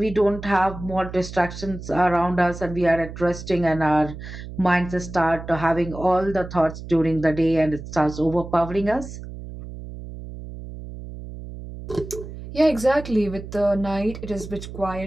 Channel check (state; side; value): noise; right; hum, 11 dB below the sound